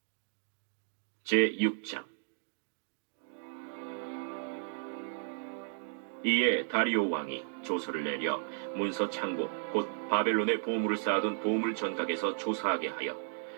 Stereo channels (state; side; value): silent; left; 55 dB below the other